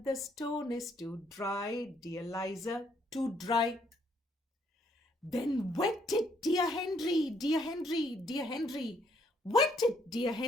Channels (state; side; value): normal; both; correlation 0.69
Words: The stone is too dry, dear Liza, too dry. Then wet it, dear Henry, dear Henry, dear Henry. Wet it, dear